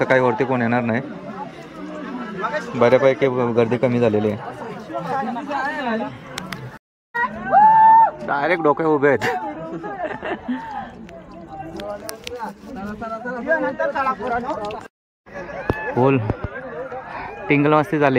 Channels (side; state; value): both; identical; correlation 1.00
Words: काही वरती कोण येणार नाही. बऱ्यापैकी गर्दी कमी झालेली आहे. डायरेक्ट डोके उभे आहेत. फुल टिंगल मस्ती